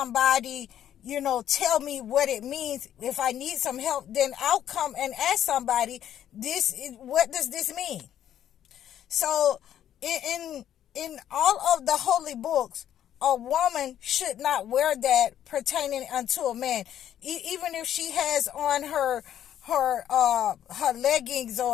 tell me what it means. If I need some help, then I'll come and ask somebody, what does this mean? So in all of the holy books, a woman should not wear that pertaining unto a man, even if she has on her leggings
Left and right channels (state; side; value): quieter; right; 10.7 dB